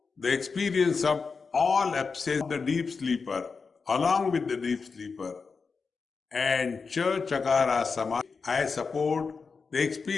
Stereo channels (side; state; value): right; quieter; 4.9 dB